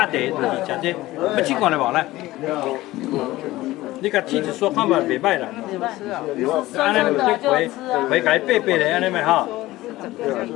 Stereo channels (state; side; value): quieter; right; 17.5 dB